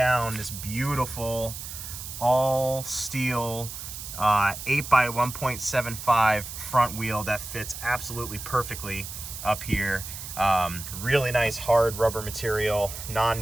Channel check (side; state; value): right; noise; hiss, 9 dB below the sound